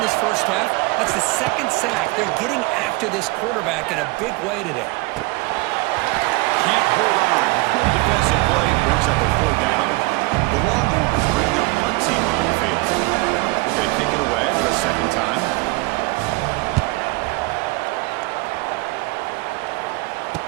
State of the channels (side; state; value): left; quieter; 23.9 dB